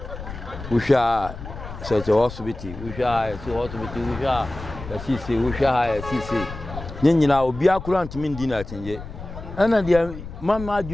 Usha se hospital, usha se hospital, usha sisi, usha sisi. Nyina obi akura ntimi ndi na atenje. Ana dia mama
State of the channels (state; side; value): noise; left; rumble, 11 dB below the sound